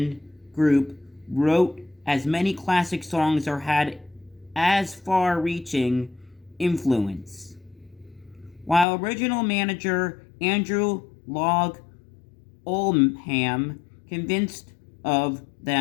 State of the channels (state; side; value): drops out; right; at 8.8 s